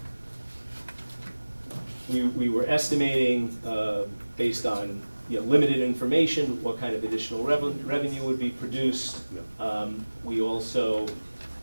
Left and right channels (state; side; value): inverted; both; correlation -1.00